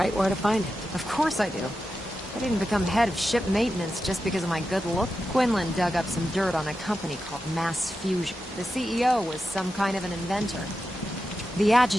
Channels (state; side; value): normal; both; correlation 0.90